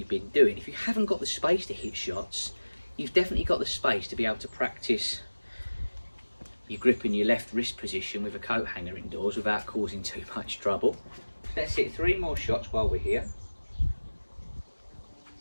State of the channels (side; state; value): both; inverted; correlation -1.00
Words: been doing, if you haven't got the space to hit shots, you've definitely got the space to be able to practice your grip in your left wrist position with a coat hanger indoors without causing too much trouble. Let's hit 3 more shots while we're here.